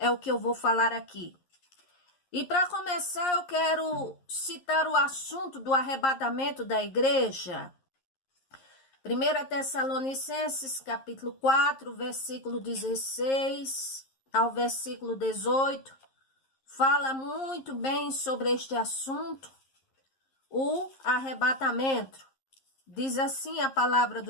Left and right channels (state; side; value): late; right; 11 ms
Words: o que eu vou falar aqui. E para começar, eu quero citar o assunto do arrebatamento da igreja. 1 Tessalonicenses, capítulo 4, versículo 16 ao versículo 18, fala muito bem sobre este assunto, o arrebatamento. Diz assim a palavra